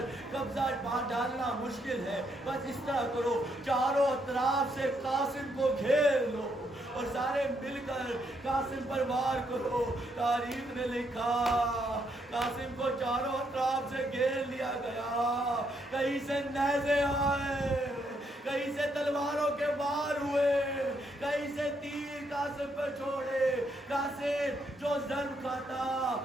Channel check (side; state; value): both; normal; correlation 0.75